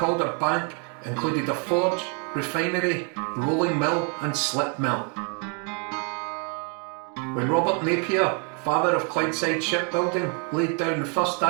included a forge, refinery, rolling mill and slip mill. When Robert Napier, father of Clydeside shipbuilding, laid down the first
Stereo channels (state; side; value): quieter; left; 38.9 dB